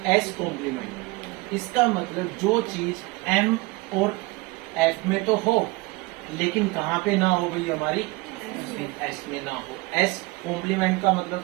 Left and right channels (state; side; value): quieter; left; 23.7 dB